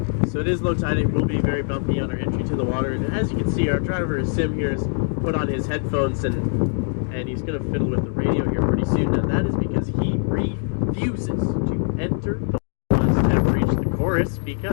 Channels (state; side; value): silent; right; 59 dB below the other